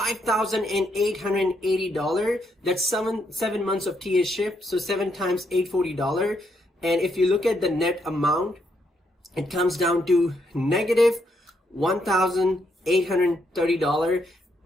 That's seven months of TA-ship, so 7 times $840. And if you look at the net amount, it comes down to negative $1,830,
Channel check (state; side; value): normal; both; correlation 0.77